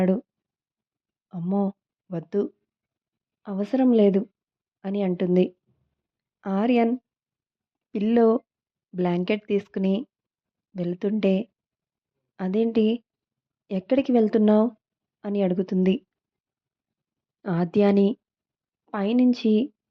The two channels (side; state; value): both; identical; correlation 1.00